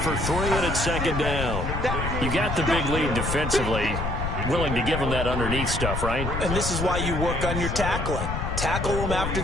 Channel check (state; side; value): noise; left; rumble, 3 dB below the sound